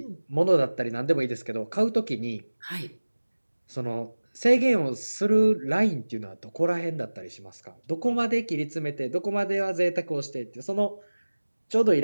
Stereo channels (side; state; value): both; inverted; correlation -1.00